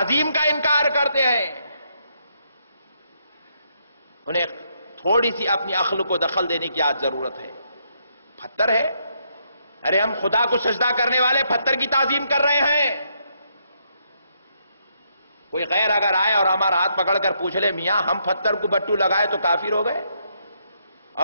کا انکار کرتے ہیں انہیں تھوڑی سی اپنی عقل کو دخل دینے کی آج ضرورت ہے۔ پتھر ہے، ارے ہم خدا کو سجدہ کرنے والے پتھر کی تعظیم کر رہے ہیں۔ کوئی غیر اگر آئے اور ہمارا ہاتھ پکڑ کر پوچھ لے میاں ہم پتھر کو بٹو لگائے تو کافر ہو گئے،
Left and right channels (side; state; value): both; inverted; correlation -0.75